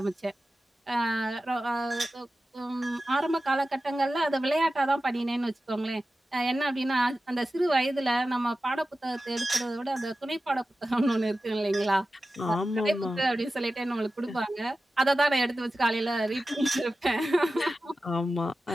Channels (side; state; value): both; normal; correlation 0.94